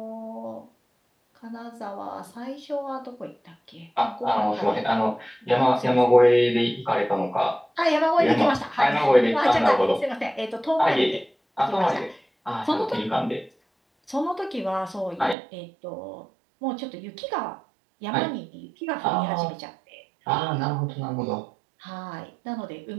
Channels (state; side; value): drops out; left; at 15.4 s